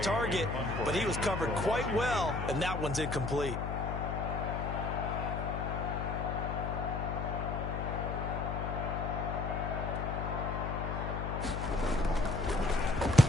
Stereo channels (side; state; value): left; noise; hum, 3 dB below the sound